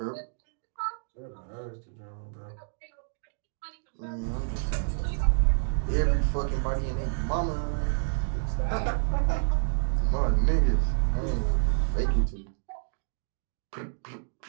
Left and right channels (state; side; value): silent; left; digital silence